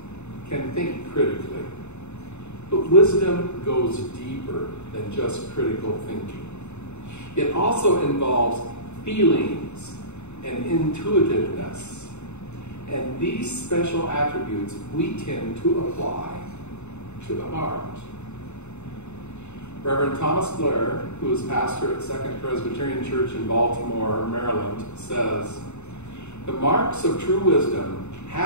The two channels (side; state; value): right; late; 0.82 ms